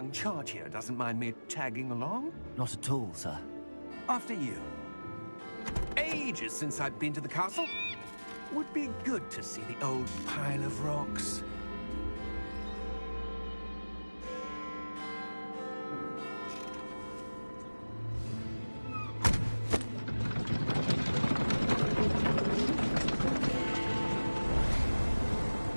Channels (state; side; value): inverted; both; correlation -1.00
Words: charge here doesn't mind me tagging along. Not at all, sir. After you. Ages since I'd been to the castle. Would be good to see the old pile of rocks.